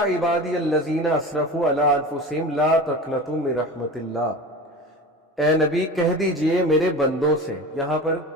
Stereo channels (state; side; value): normal; both; correlation 0.32